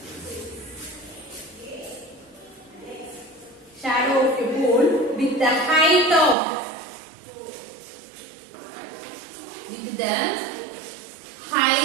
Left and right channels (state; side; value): drops out; left; at 6.4 s